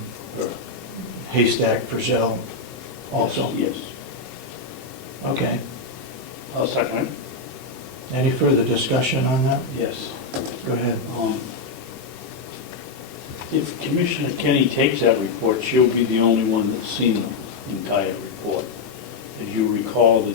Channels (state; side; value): quieter; right; 3.9 dB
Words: Haystack Frizzell also? Yes. Okay. I'll second it. Any further discussion on that? Yes. Go ahead. If Commissioner Kenney takes that report, she'll be the only one that's seen the entire report. As you recall, the